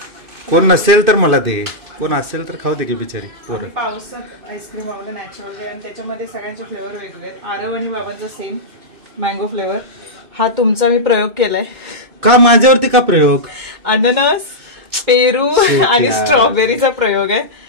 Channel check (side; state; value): left; late; 2.6 ms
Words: कोण नसेल तर मला दे, कोण असेल तर खाऊ दे की बिचारी पोरं. आम्ही पावसात आईस्क्रीम आवडलं नॅचरल आहे आणि त्याच्यामध्ये सगळ्यांचे फ्लेवर वेगवेगळे आहेत. आरव आणि बाबांचा सेम मँगो फ्लेवर. हा तुमचा मी प्रयोग केलाय. का माझ्यावरती का प्रयोग? अननस, पेरू आणि स्ट्रॉबेरीचा प्रयोग आहे.